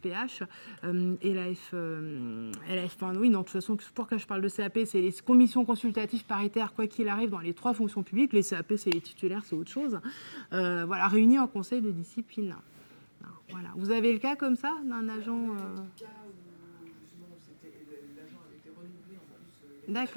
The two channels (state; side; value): inverted; both; correlation -1.00